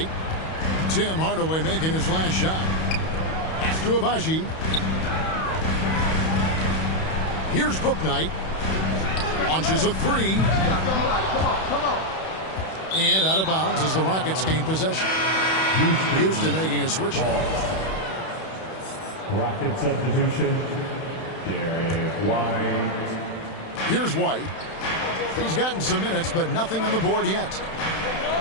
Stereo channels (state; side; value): late; right; 31 ms